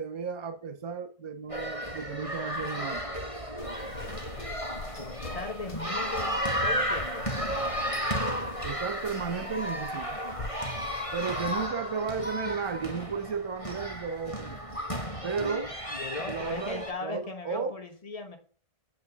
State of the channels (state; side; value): late; right; 1.5 ms